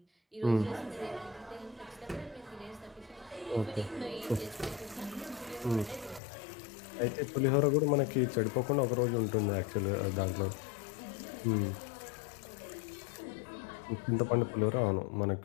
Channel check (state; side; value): drops out; right; at 6.2 s